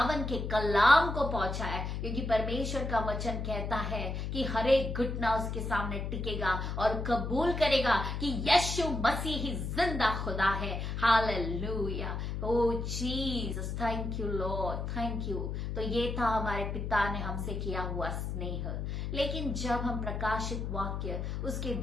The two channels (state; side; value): noise; left; hum, 3 dB below the sound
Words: के कलाम को पहुंचाए। क्योंकि परमेश्वर का वचन कहता है कि हर एक घुटना उसके सामने टिकेगा और कबूल करेगा कि यीशु मसीह ही जिंदा खुदा है। Hallelujah, O Jesus, thank you Lord, thank you. तो ये था हमारे पिता ने हमसे किया हुआ स्नेह। लेकिन जब हम प्रकाशित वाक्य उसके